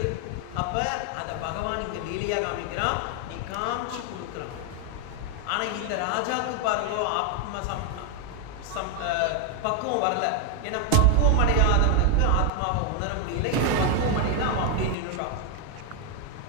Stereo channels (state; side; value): different; both; correlation 0.01